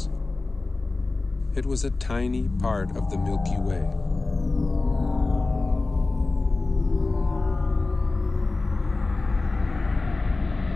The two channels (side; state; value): right; quieter; 3.4 dB